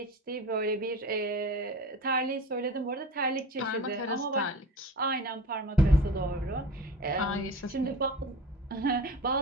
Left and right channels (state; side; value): normal; both; correlation 0.35